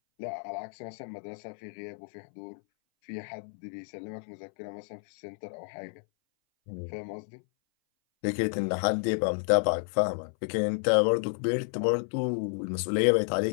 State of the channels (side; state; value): right; silent; 57 dB below the other